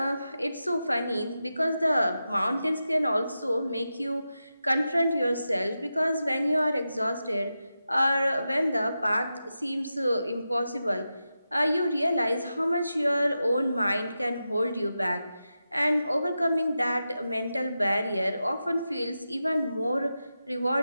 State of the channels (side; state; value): both; inverted; correlation -0.90